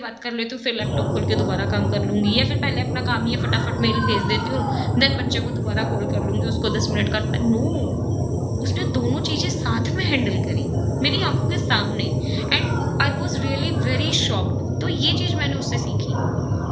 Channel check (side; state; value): both; identical; correlation 1.00